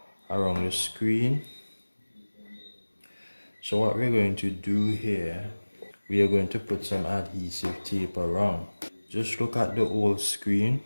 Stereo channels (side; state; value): both; inverted; correlation -1.00